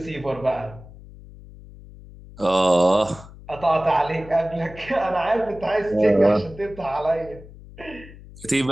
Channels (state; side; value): noise; left; hum, 18 dB below the sound